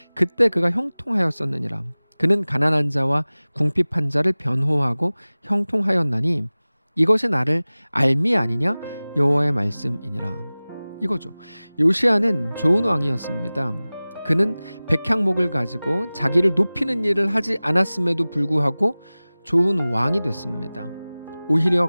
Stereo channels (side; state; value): both; inverted; correlation -0.99